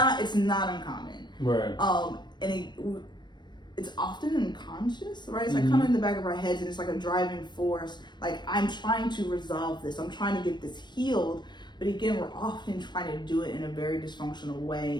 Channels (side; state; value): right; late; 0.22 ms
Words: uncommon. Right. And it's often unconscious, right? It's like coming in the back of our heads, and it's like a driving force. Like, I'm trying to resolve this. I'm trying to get this healed. But again, we're often trying to do it in a very dysfunctional